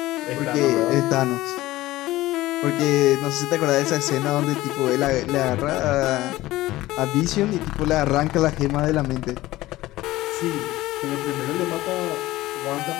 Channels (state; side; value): quieter; right; 17.2 dB